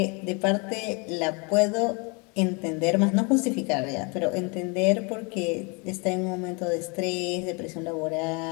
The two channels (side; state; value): right; quieter; 31.7 dB